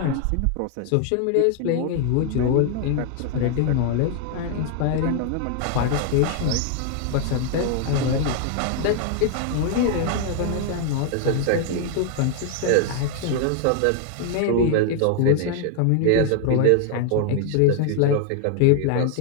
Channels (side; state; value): both; different; correlation 0.00